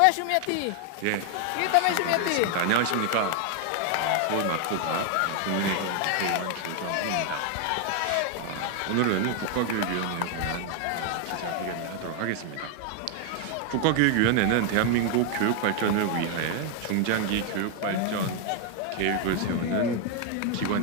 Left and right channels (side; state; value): both; different; correlation 0.00